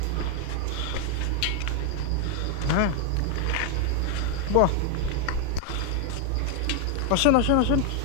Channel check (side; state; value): both; different; correlation 0.01